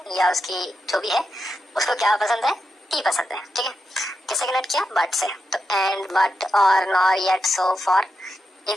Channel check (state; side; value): normal; both; correlation 0.87